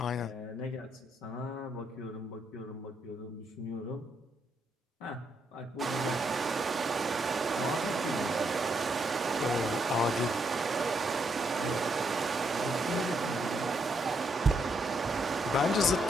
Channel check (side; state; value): both; normal; correlation 0.77